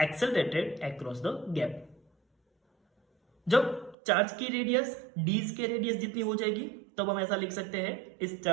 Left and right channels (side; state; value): left; drops out; at 4.0 s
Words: accelerated across the gap. जब charge की radius D's के radius जितनी हो जाएगी, तब हम ऐसा लिख सकते हैं इस